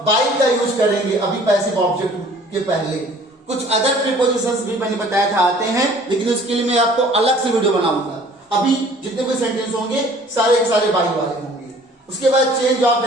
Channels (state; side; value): normal; both; correlation 0.52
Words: बाय का यूज करेंगे अभी पैसिव ऑब्जेक्ट के पहले। कुछ अदर प्रीपोजिशंस भी मैंने बताया था आते हैं, लेकिन उसके लिए मैं आपको अलग से वीडियो बनाऊंगा। अभी जितने भी सेंटेंस होंगे सारे के सारे बाय वाले होंगे। उसके बाद चेंज ऑफ